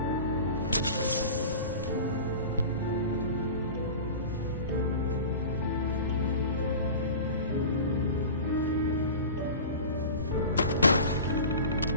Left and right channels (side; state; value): both; inverted; correlation -0.35